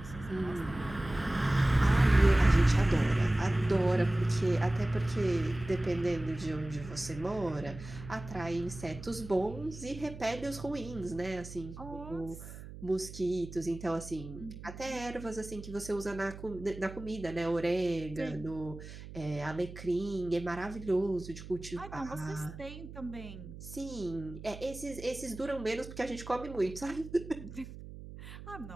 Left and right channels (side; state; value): right; noise; hum, 13 dB below the sound